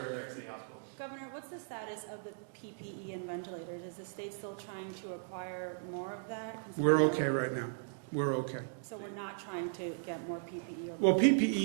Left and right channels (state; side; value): silent; left; digital silence